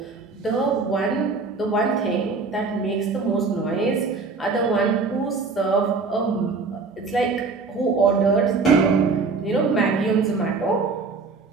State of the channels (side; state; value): left; quieter; 4.3 dB